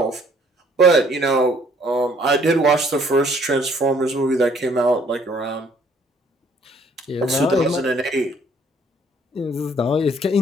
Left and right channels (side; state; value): both; normal; correlation 0.62